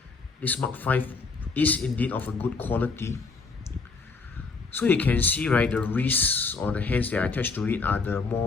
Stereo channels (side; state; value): right; quieter; 4.3 dB